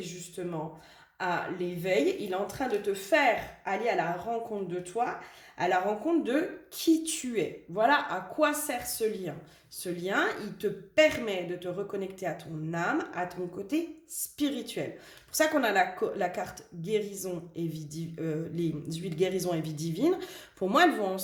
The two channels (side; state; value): both; identical; correlation 1.00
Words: justement à l'éveil. Il est en train de te faire aller à la rencontre de toi, à la rencontre de qui tu es. Voilà à quoi sert ce lien. Ce lien, il te permet de te reconnecter à ton âme, à ton côté spirituel. C'est pour ça qu'on a la carte guérison et vie les huiles guérison et vie divine. Pour moi, elles vont